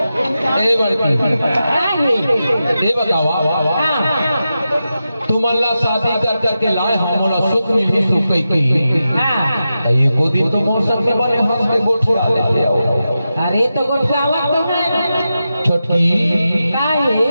ए बड़की का है ये बताओ तुम अल्लाह शादी कर करके लाए हमारा सुख मिली सुख की ये को दिन तो मौसम में बने हंस के गोठुआ ले आओ अरे तो गोठवावा तो है छोटकी का है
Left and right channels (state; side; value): inverted; both; correlation -0.90